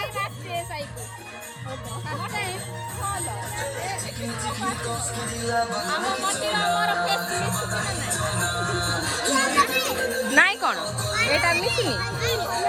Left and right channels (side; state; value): both; identical; correlation 1.00